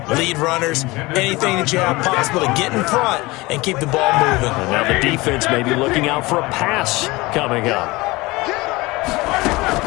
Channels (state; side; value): quieter; right; 21.9 dB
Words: lead runners, anything that you have possible to get in front and keep the ball moving. And now the defense may be looking out for a pass coming up.